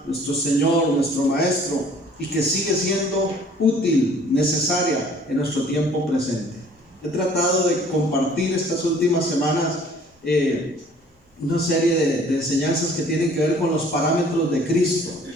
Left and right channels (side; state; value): both; normal; correlation 0.54